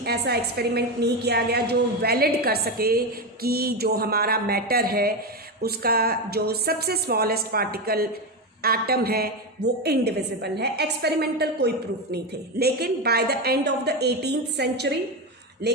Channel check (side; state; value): both; normal; correlation 0.14